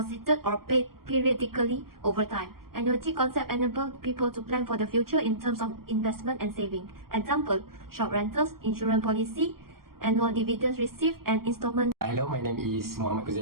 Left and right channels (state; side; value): late; left; 0.93 ms